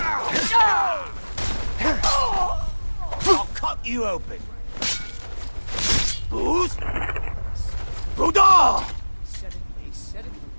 I'll cut you open. Who's? Buddha! They said it,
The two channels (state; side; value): inverted; both; correlation -1.00